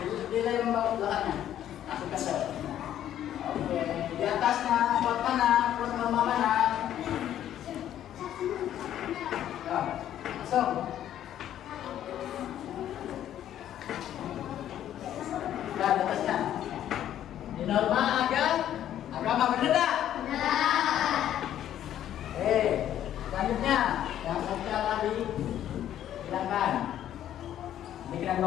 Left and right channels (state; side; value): quieter; right; 11.3 dB